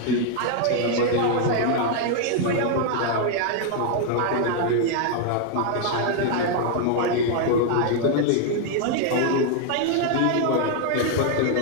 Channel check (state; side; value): different; both; correlation 0.00